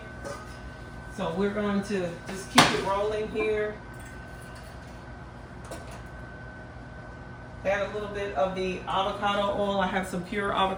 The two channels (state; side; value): identical; both; correlation 1.00